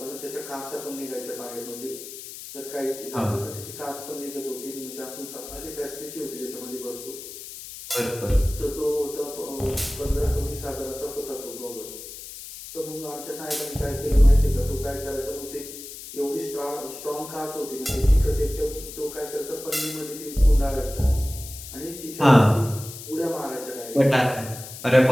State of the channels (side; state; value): left; noise; hiss, 12 dB below the sound